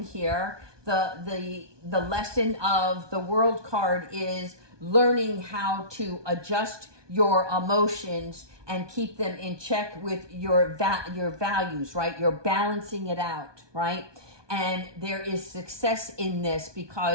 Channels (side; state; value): left; late; 1.2 ms